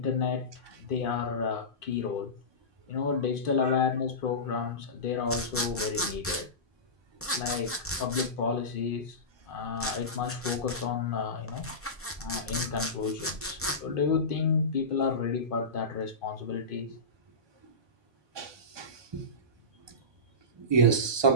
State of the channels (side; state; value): both; normal; correlation -0.20